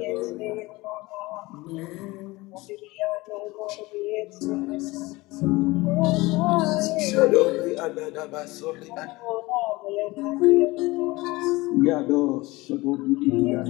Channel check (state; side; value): quieter; right; 21.4 dB